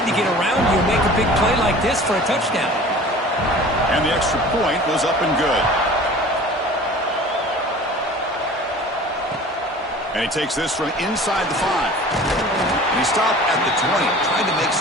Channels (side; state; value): both; normal; correlation 0.43